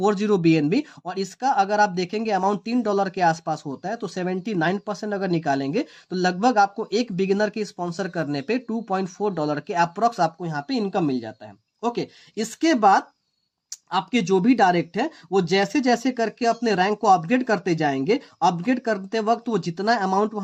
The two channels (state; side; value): identical; both; correlation 1.00